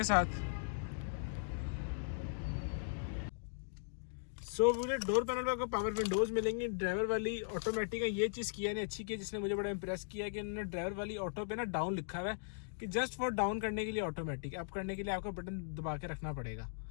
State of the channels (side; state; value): right; silent; digital silence